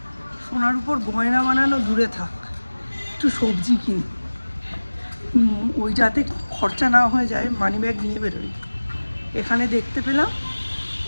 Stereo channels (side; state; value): both; inverted; correlation -1.00